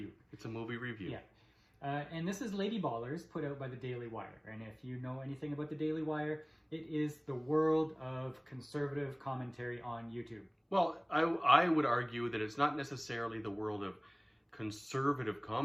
It's a movie review. Yeah. And this is Lady Ballers, put out by the Daily Wire. And if you know anything about the Daily Wire, it is the world of conservative commentary on YouTube. Well, I would argue that it's not necessarily the world of conservative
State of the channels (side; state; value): both; identical; correlation 1.00